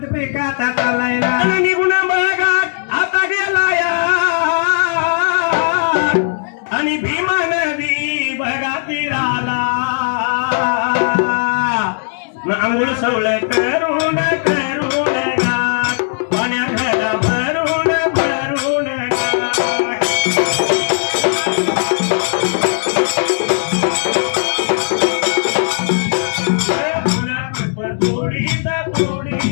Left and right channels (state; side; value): silent; right; digital silence